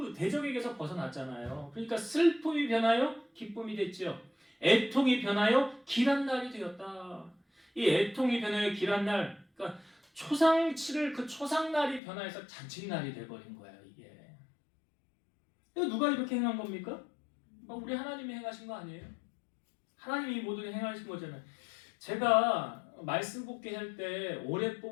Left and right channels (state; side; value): drops out; right; at 12.0 s